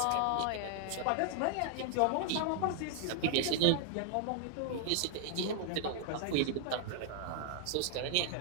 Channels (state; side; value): different; both; correlation 0.00